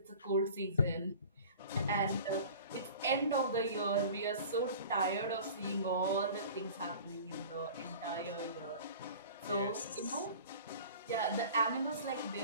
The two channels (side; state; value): both; inverted; correlation -0.42